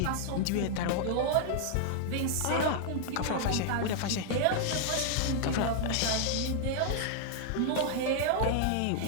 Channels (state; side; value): different; both; correlation -0.01